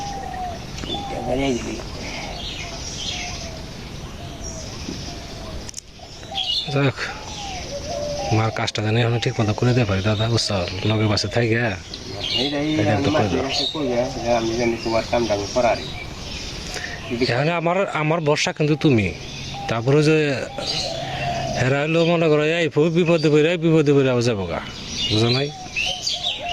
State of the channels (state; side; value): identical; both; correlation 1.00